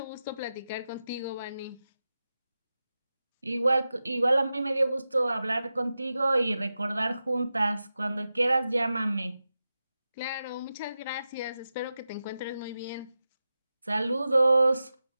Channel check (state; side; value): inverted; both; correlation -0.93